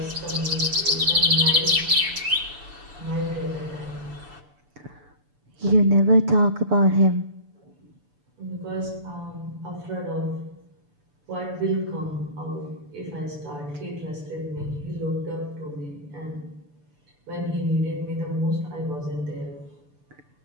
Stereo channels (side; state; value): left; late; 6.9 ms